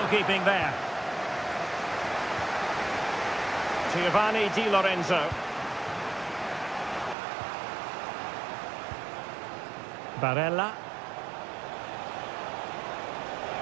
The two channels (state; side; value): drops out; left; at 7.2 s